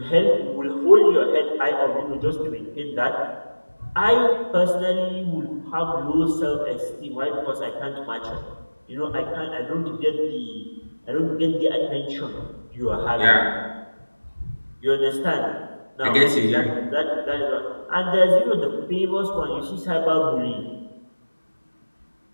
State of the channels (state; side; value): inverted; both; correlation -1.00